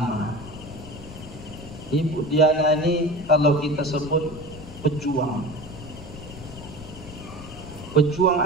Ibu Diana ini kalau kita sebut pejuang. Pejuang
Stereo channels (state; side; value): noise; left; rumble, 14 dB below the sound